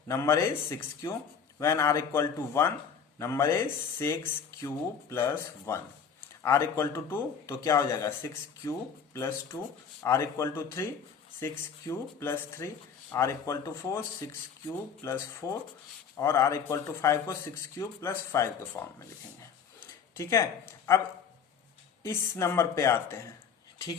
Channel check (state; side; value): quieter; right; 6.9 dB